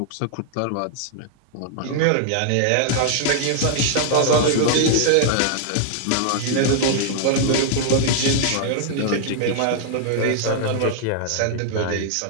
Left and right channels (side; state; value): both; different; correlation 0.00